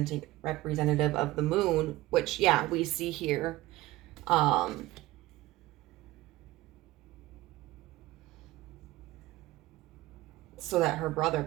of the moon, which, yeah, we see here. So that her brother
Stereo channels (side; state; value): left; quieter; 17.9 dB